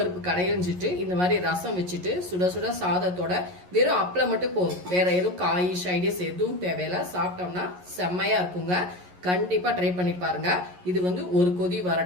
கடையிஞ்சிட்டு இந்த மாதிரி ரசம் வச்சுட்டு சுட சுட சாதத்தோட வெறும் அப்பளம் மட்டும் போதும், வேற எதுவும் காய் சைடிஸ் எதுவும் தேவையில்லை, சாப்பிட்டோம்னா செம்மையாக இருக்குங்க. கண்டிப்பாக ட்ரை பண்ணி பாருங்க. இது ஒரு கொதி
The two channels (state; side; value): late; left; 11 ms